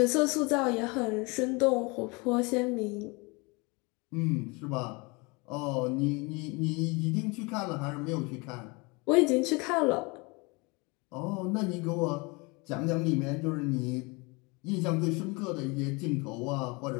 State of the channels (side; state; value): right; quieter; 27.8 dB